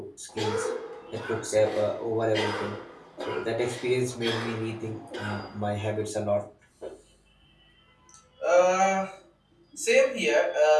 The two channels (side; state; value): both; identical; correlation 1.00